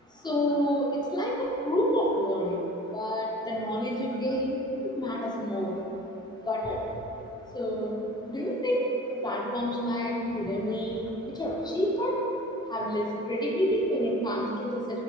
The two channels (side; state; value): both; normal; correlation 0.44